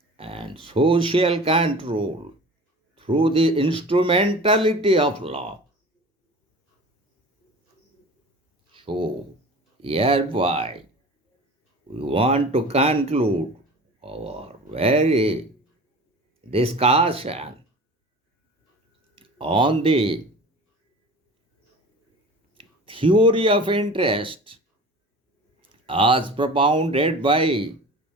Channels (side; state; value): both; normal; correlation 0.39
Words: and social control through the instrumentality of law. So, hereby we want to conclude our very discussion on the theory of interest as propounded by